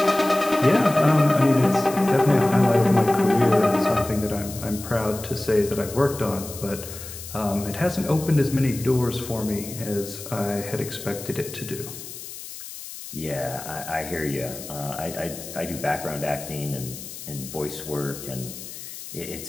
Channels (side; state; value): left; noise; hiss, 12 dB below the sound